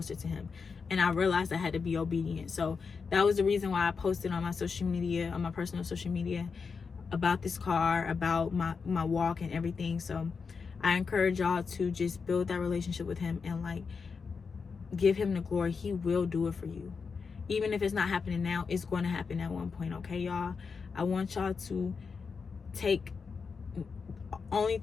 to him. And I realized I had to be obedient. So that was the reason why I posted on my social media, on my personal social media, about this car, about my walk and everything. So I encourage y'all to just build that relationship with him, and like, give him the glory. He will do it for you. Even if it's not happening now, it's going to happen at one point, okay, y'all? I want y'all to take only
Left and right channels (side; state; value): right; quieter; 5.3 dB